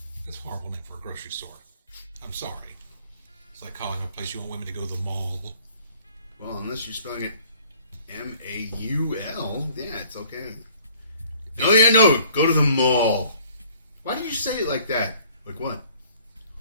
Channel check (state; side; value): inverted; both; correlation -0.56